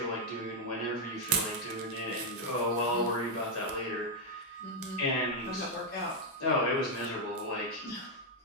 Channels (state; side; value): normal; both; correlation 0.00